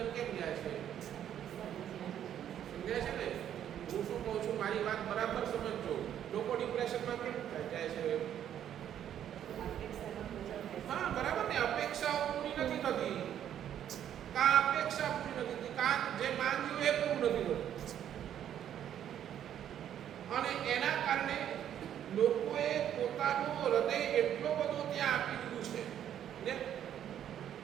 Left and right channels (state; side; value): quieter; left; 10.2 dB